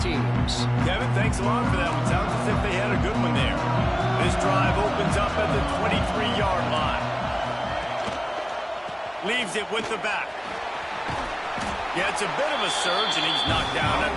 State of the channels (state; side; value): identical; both; correlation 1.00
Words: teams. Kevin, thanks a lot for that one. Sounds as if they had a good one there. This drive opens up at the 23-yard line. Leaves it with the back. Yeah, it's a bit of a surge, and he's knocked down